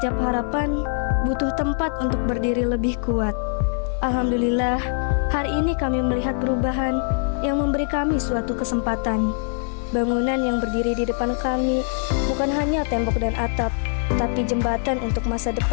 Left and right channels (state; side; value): silent; right; 64 dB below the other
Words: harapan butuh tempat untuk berdiri lebih kuat. Alhamdulillah, hari ini kami melihat perubahan yang memberi kami suatu kesempatan. Bangunan yang berdiri di depan kami bukan hanya tembok dan atap, tapi jembatan untuk masa